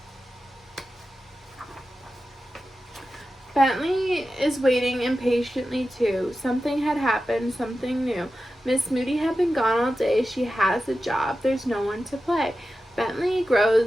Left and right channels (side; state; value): both; normal; correlation 0.93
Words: Bentley is waiting impatiently too. Something had happened, something new. Miss Moody had been gone all day. She has a job. There's no one to play. Bentley